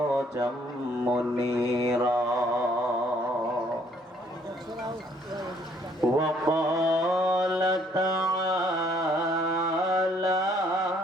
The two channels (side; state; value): both; normal; correlation 0.64